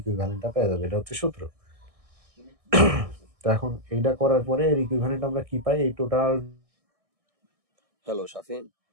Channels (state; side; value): late; left; 1.6 ms